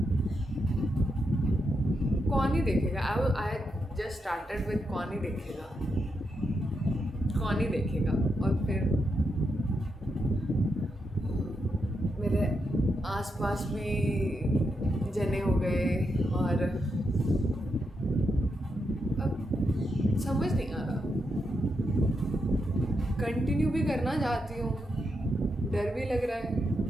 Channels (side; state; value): both; normal; correlation 0.84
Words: कौन ही देखेगा। आई जस्ट स्टार्टेड विद कौन ही देखेगा, कौन ही देखेगा। और फिर मेरे आसपास भी जने हो गए और अब समझ नहीं आ रहा, कंटिन्यू भी करना चाहती हूँ, डर भी लग रहा है।